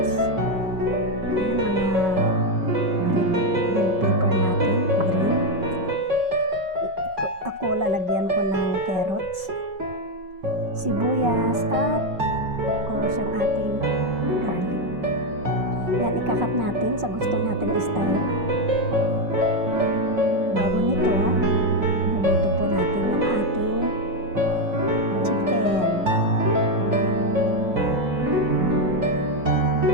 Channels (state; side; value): late; left; 5.3 ms